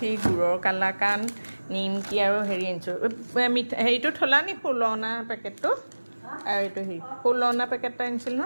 গুড়ৰ কালাকান নিমকি আৰু হেৰি আনিছোঁ হেৰিটো থলা নি ফুলনা পেকেটটো আৰু এইটো হেৰি ফুলনা পেকেট এটা আনিছিল ন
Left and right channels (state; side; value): inverted; both; correlation -1.00